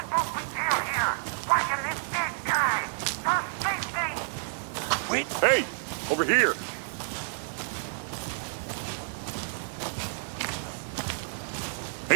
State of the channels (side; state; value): left; silent; digital silence